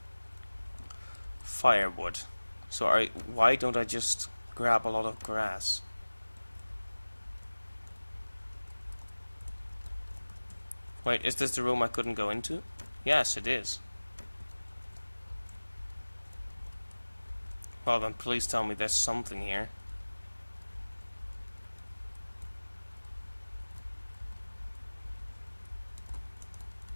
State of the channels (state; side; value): inverted; both; correlation -1.00